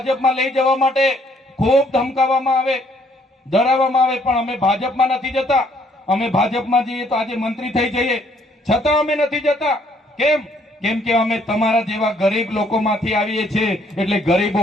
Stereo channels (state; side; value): normal; both; correlation 0.65